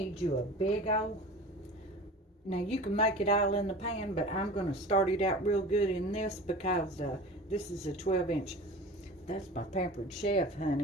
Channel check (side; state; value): both; normal; correlation 0.37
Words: you a big old. Now you can make it all in the pan, but I'm going to start it out real good in this because this is a 12-inch. That's my Pampered Chef,